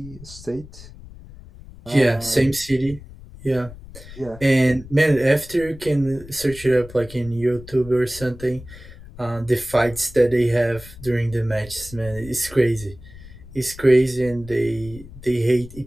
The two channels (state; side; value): noise; left; rumble, 17 dB below the sound